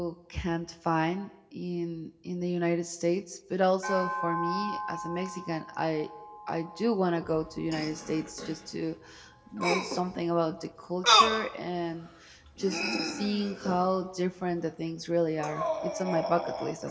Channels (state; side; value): identical; both; correlation 1.00